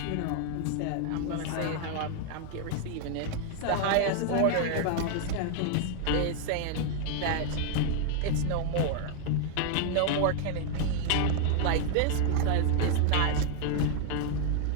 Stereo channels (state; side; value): different; both; correlation 0.00